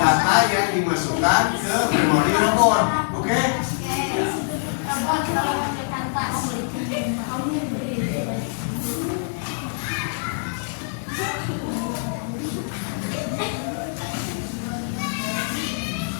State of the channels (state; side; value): silent; right; digital silence